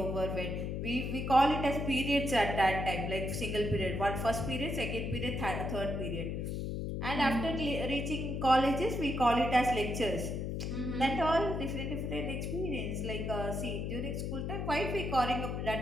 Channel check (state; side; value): noise; left; hum, 3 dB below the sound